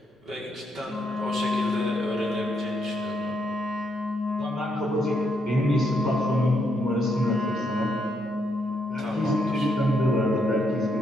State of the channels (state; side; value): normal; both; correlation 0.77